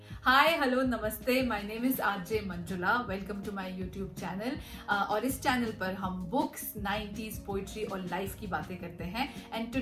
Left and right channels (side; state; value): both; identical; correlation 1.00